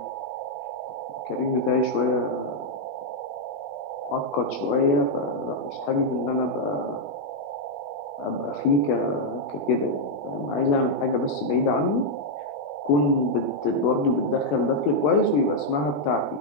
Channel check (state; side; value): late; right; 20 ms